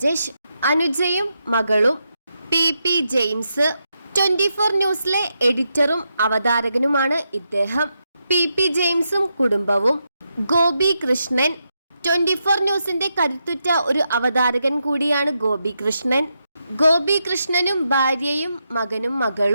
അനുജയും മകളും. പി ജെയിംസ് 24 ന്യൂസിലെ എഡിറ്ററും അവതാരകനുമാണ് ഇദ്ദേഹം. പി ജെയിംസും കുടുംബവും. ഗോപി കൃഷ്ണൻ 24 ന്യൂസിന്റെ കരുത്തുറ്റ ഒരു അവതാരകൻ കൂടിയാണ് ഗോപി കൃഷ്ണൻ. ഗോപി കൃഷ്ണനും ഭാര്യയും മകനും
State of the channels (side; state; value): both; inverted; correlation -0.84